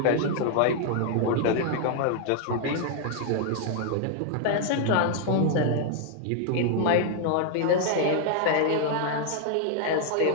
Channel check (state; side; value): different; both; correlation 0.00